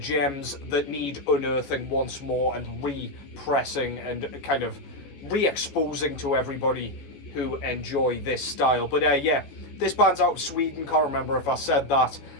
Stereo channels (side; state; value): right; late; 14 ms